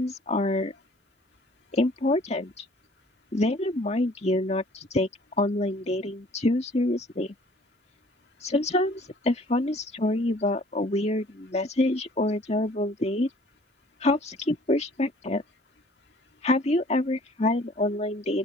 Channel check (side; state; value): both; normal; correlation 0.54